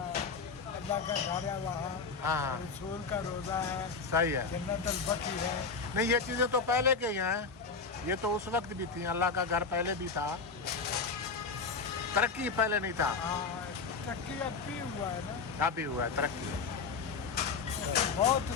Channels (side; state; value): right; quieter; 4.9 dB